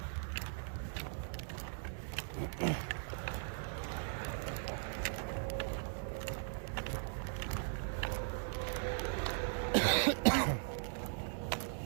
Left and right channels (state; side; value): silent; left; digital silence